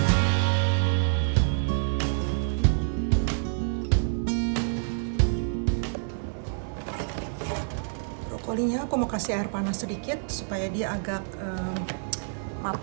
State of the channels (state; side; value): silent; left; digital silence